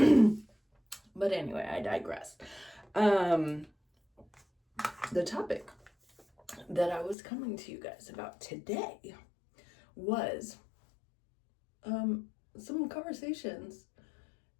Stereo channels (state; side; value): drops out; right; at 7.2 s